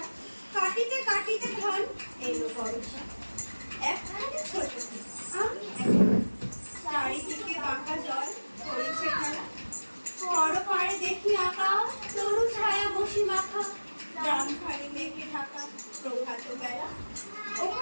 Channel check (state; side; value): inverted; both; correlation -1.00